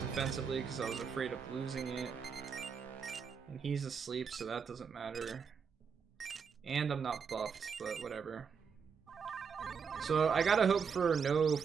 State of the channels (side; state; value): left; quieter; 6.3 dB